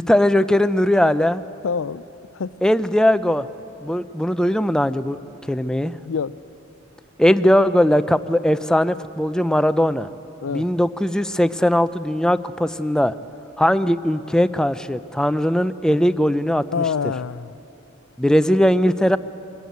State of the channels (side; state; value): both; normal; correlation 0.90